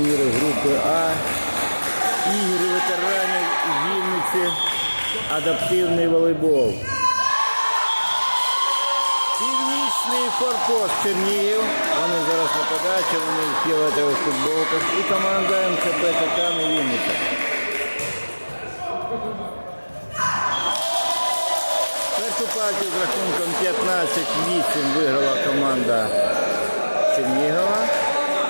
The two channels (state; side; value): inverted; both; correlation -1.00